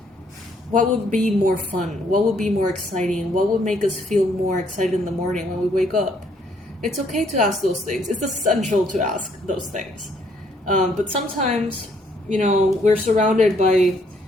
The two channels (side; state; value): both; normal; correlation 0.68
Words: what would be more fun? What would be more exciting? What would make us feel more excited in the morning when we wake up? It's okay to ask those things. It's essential to ask those things. But sometimes, you know, we're surrounded by